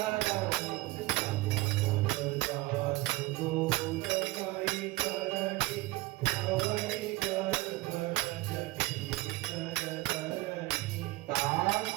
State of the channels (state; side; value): quieter; left; 19.8 dB